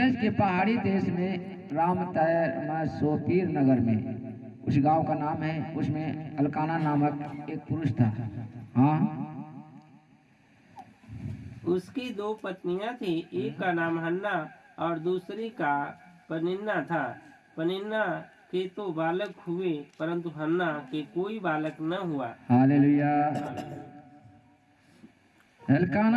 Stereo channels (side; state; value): both; identical; correlation 1.00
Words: के पहाड़ी देश में रामतैर सोपीर नगर में उस गांव का नाम है। उसमें अलकाना नामक एक पुरुष था। हाँ, उसकी 2 पत्नियां थी, एक का नाम हन्ना और दूसरी का पनिन्ना था। पनिन्ना के तो बालक हुए, परंतु हन्ना के कोई बालक न हुआ। हालेलुया।